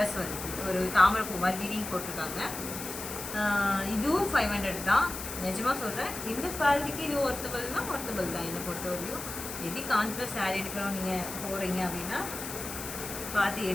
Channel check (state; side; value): noise; left; hiss, 8 dB below the sound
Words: வருது, ஒரு தாமரை பூ மாதிரி டிடிங் போட்டிருக்காங்க. இதுவும் 500 தான். நிஜமாக சொல்கிறேன், இந்த குவாலிட்டிக்கு இது ஒர்த்தபிள் தான் என்னை பொறுத்தவரையும். எது கான்ட்ராஸ்ட் சாரீ எடுக்கிறோம் நீங்கள் போகிறீங்க அப்படின்னா பார்த்து